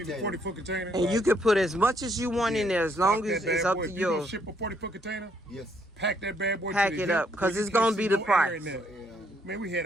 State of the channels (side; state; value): both; normal; correlation 0.70